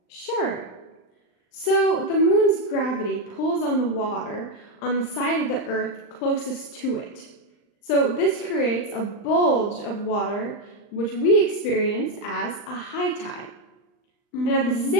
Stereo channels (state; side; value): late; right; 39 ms